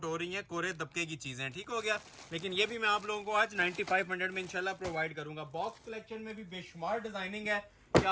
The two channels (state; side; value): identical; both; correlation 1.00